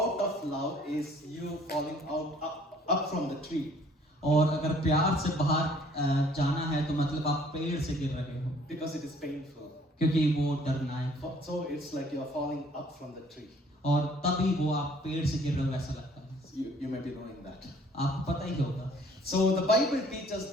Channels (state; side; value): normal; both; correlation 0.58